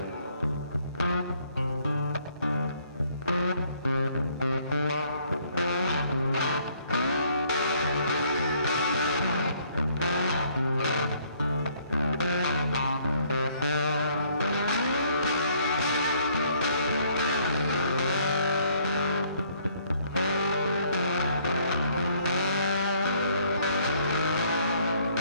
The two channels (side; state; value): both; inverted; correlation -0.64